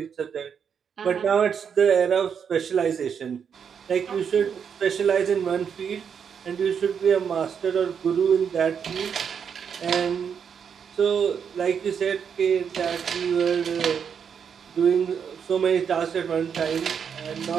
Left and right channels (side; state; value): left; quieter; 7.2 dB